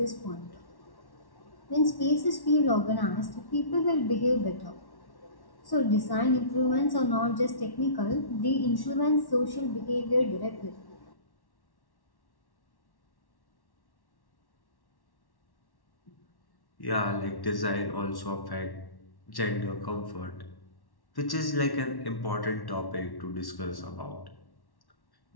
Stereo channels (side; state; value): right; late; 1.1 ms